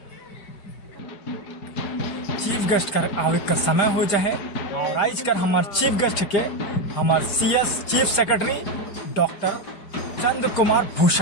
चीफ गेस्ट कर आवे का समय हो जाए और आज कर हमारे चीफ गेस्ट के हमारे सीएस चीफ सेक्रेटरी डॉक्टर चंद्र कुमार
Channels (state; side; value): late; right; 5.0 ms